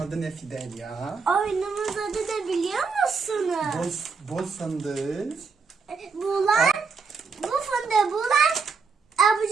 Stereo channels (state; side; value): quieter; left; 5.0 dB